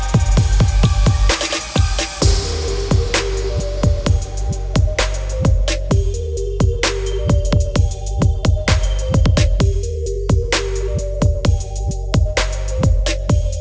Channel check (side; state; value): both; identical; correlation 1.00